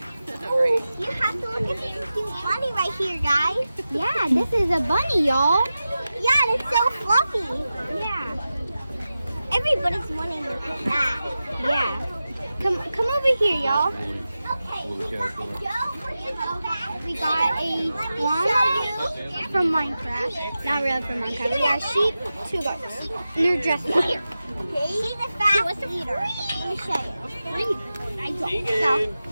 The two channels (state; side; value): inverted; both; correlation -0.94